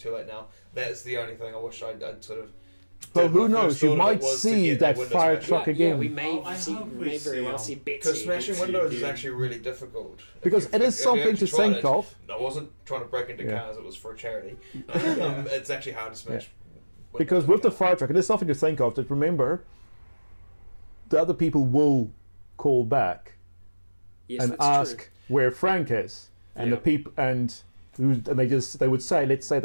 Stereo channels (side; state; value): both; inverted; correlation -1.00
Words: late now. That's the only thing I wish I'd sort of. But did. who My knows? first You thought of might it was to see get that a window fire smasher. truck again. we may I hope we may very well see see Betsy. Because smashing windows is again. actually really difficult. Because it is something to think of. I wasn't trying to break into cars, it was for a charity. It's actually hard to smash. Because with the fire truck, it is something to think of. That remember, the other people will call back Yes, and that's ask true. where Frank is, and the people they would say, let's say